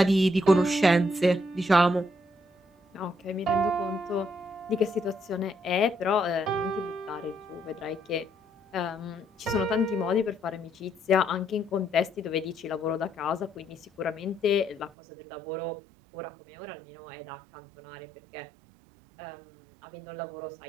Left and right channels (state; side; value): drops out; left; at 14.9 s